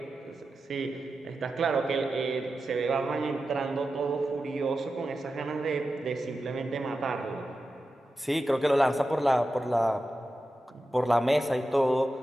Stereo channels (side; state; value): both; normal; correlation 0.92